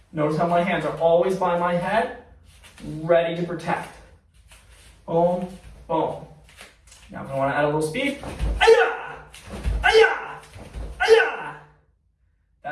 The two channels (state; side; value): identical; both; correlation 1.00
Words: Notice how my hands are always by my head, ready to protect. Boom. Boom. Now if I want to add a little speed, aya! Aya! Aya!